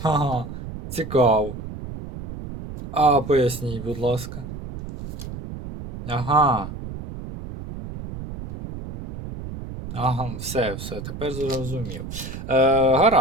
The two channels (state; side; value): noise; right; rumble, 10 dB below the sound